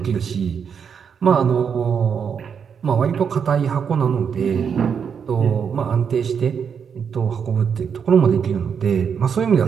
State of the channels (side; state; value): left; quieter; 7.0 dB